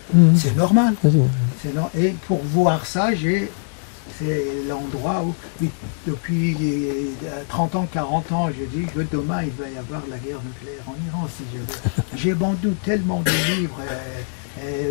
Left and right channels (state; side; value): silent; right; digital silence